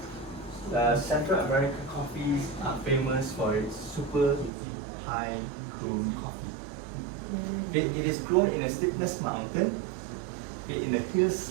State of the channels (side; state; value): left; drops out; at 4.5 s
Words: Central America coffees are famous for its super high grown coffee. It is grown in a steepness mountain, in a hill